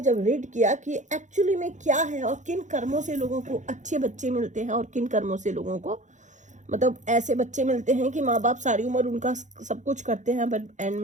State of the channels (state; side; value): late; left; 0.35 ms